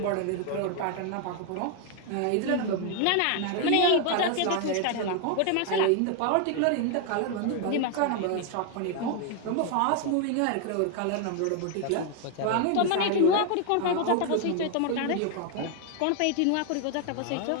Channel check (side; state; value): both; different; correlation 0.01